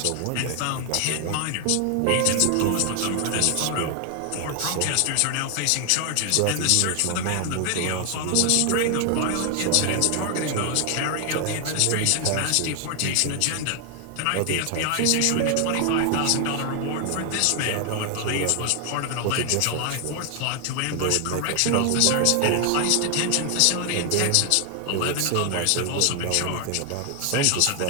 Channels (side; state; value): both; different; correlation 0.00